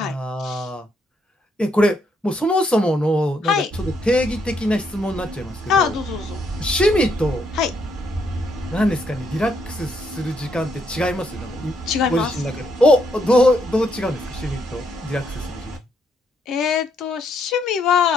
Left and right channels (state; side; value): normal; both; correlation 0.75